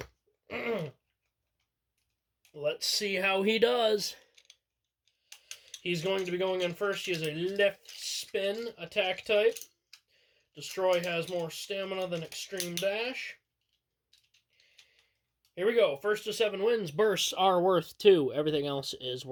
Let's see how he does. He's going to be going in first. He has a left spin attack type. Destroy has more stamina than Extreme Dash. Here we go. First to 7 wins. Bursts are worth 2. Everything else is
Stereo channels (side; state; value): both; identical; correlation 1.00